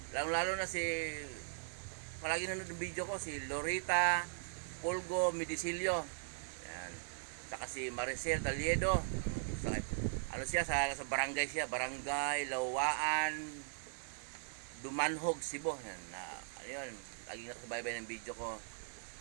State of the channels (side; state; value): left; silent; digital silence